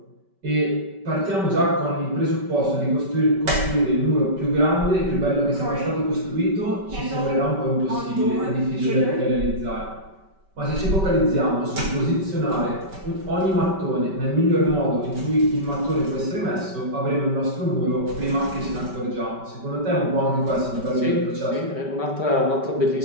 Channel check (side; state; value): left; late; 5.2 ms